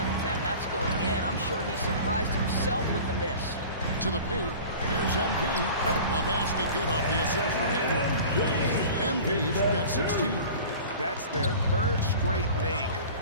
of 10, that's going in. I'm sure he surprised himself with the miss. To the paint. Here's MP. The basket good off the assist from Hayward. MP's got 16. That's their 3rd straight make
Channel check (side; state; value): both; inverted; correlation -0.40